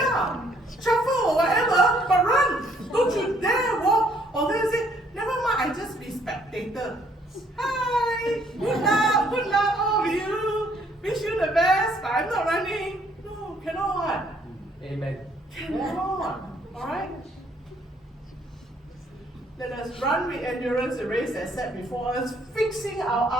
shuffle or whatever, but run. Don't you dare walk. Or then say, never mind, I just be spectator. Hi, good luck, all of you. Wish you the best, but I'm not running. No, cannot. Amen. Cannot. Alright? Let us run with endurance the race that's set before us, fixing our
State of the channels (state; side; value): normal; both; correlation 0.65